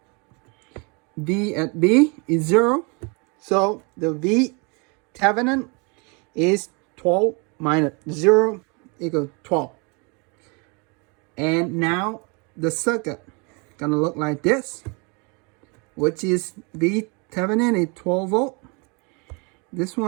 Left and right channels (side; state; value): left; quieter; 31.8 dB